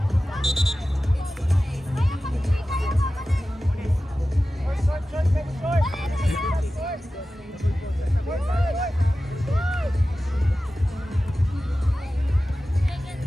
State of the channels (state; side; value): normal; both; correlation 0.95